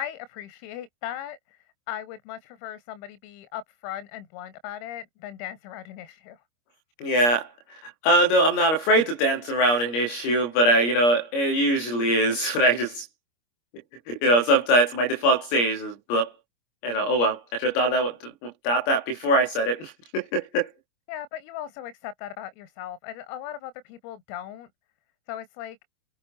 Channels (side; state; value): right; late; 25 ms